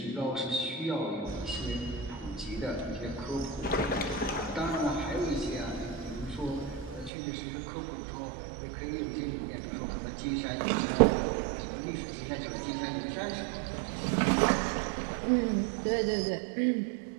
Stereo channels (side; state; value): left; drops out; at 7.1 s